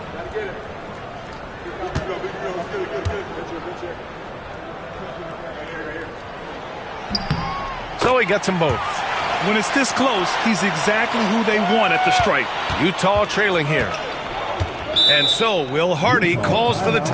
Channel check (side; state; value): both; identical; correlation 1.00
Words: So he gets them both. when it's this close, he's exactly who they want at the stripe. Utah trailing here. And so Will Hardy calls for the